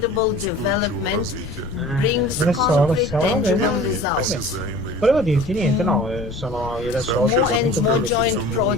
development brings concrete, tangible results. Volevo dirti niente, no, sono io adesso More and more joint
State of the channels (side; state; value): left; noise; rumble, 11 dB below the sound